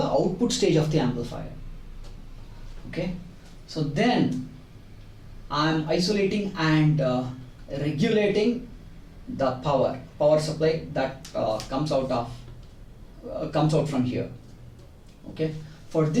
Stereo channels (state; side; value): identical; both; correlation 1.00